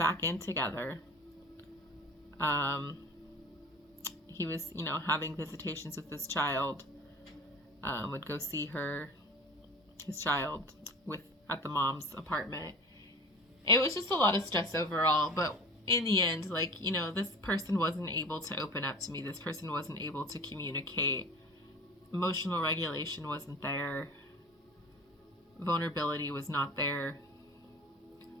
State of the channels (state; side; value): normal; both; correlation 0.39